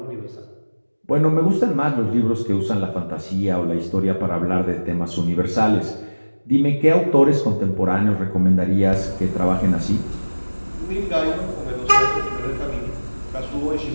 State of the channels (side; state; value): both; inverted; correlation -1.00